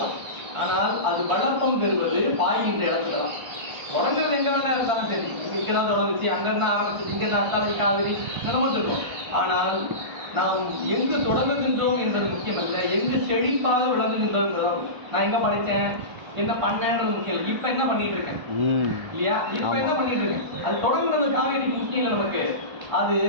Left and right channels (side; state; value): left; late; 1.5 ms